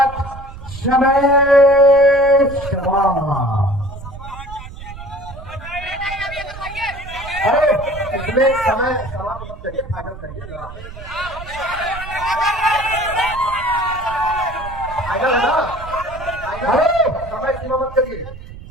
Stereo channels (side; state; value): right; noise; rumble, 13 dB below the sound